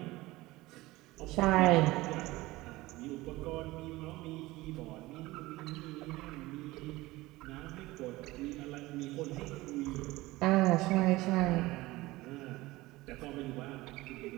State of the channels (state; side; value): quieter; left; 19.4 dB